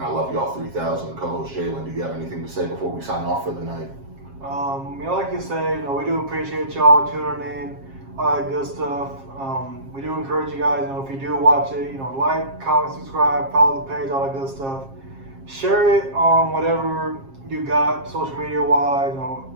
I love y'all 3,000. Co-host Jalen, do you have anything to say before we sign off for the night? Like you say, we do appreciate y'all tuning in, all that good stuff. We do encourage you guys, if you do watch it, like, comment, subscribe, follow the page, all that good stuff. Share it on whatever you got, social media wise,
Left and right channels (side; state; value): left; late; 7.4 ms